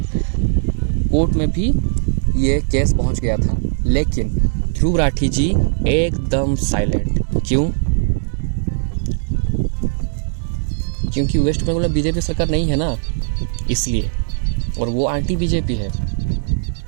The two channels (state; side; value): silent; left; digital silence